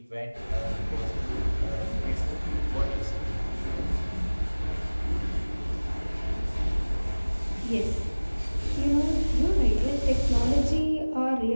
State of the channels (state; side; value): inverted; both; correlation -1.00